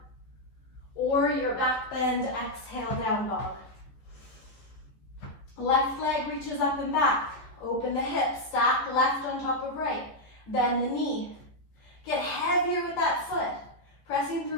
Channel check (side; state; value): right; late; 15 ms